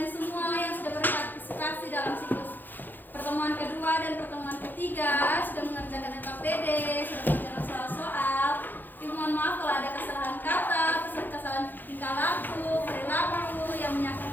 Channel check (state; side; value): late; right; 0.088 ms